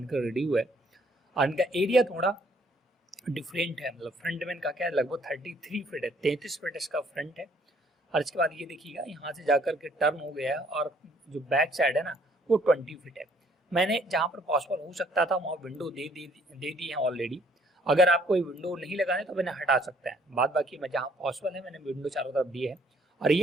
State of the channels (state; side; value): normal; both; correlation 0.63